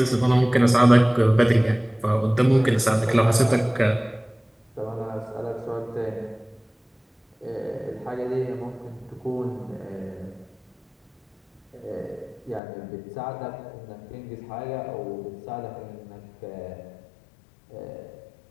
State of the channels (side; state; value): right; drops out; at 12.6 s